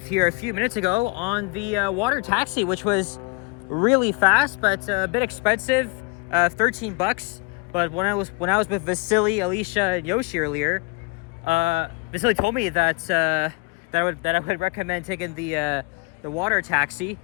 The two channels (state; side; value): quieter; right; 29.6 dB